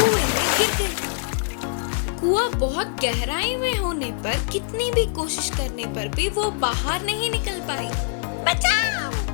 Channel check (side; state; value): right; silent; 63 dB below the other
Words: में गिर गई। कुआं बहुत गहराई में होने पर कितनी भी कोशिश करने पर भी वो बाहर नहीं निकल पाई। बचाओ,